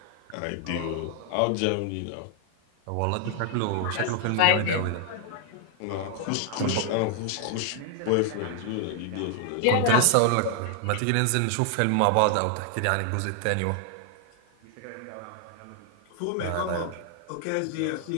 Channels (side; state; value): both; different; correlation 0.00